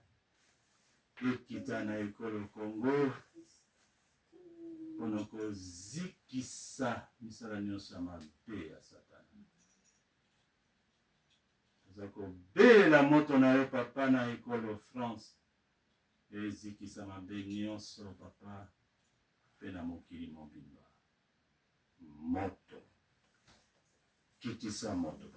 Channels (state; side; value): identical; both; correlation 1.00